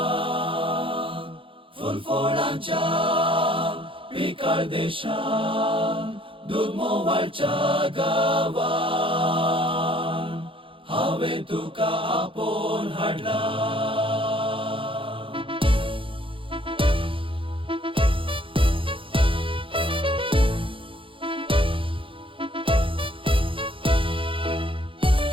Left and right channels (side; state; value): left; late; 0.25 ms